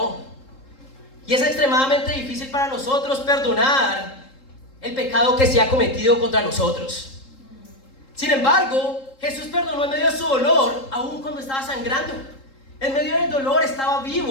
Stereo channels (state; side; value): late; right; 3.7 ms